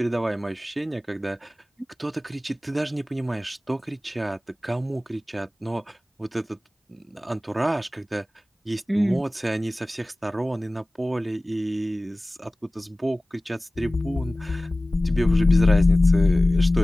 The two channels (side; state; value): both; normal; correlation 0.97